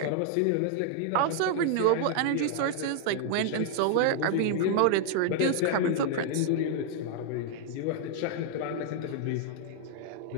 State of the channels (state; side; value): different; both; correlation 0.00